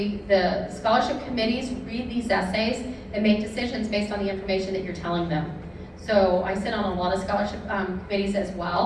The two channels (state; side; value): identical; both; correlation 1.00